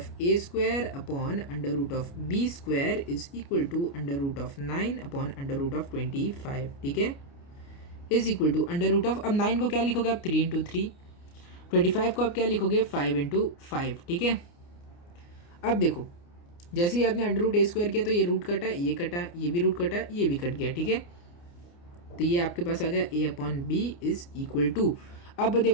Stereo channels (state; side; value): late; right; 29 ms